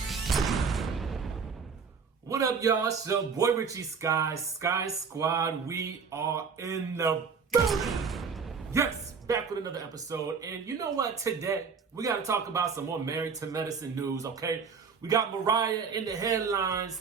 What up, y'all? It's your boy Richie Sky Squad. We are in the building. Yes, back with another episode. And you know what? Today, we got to talk about some more Married to Medicine news, okay? We got Mariah in the headlines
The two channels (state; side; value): quieter; left; 5.7 dB